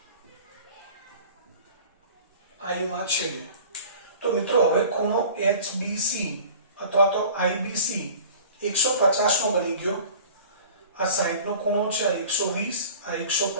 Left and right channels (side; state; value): both; inverted; correlation -0.43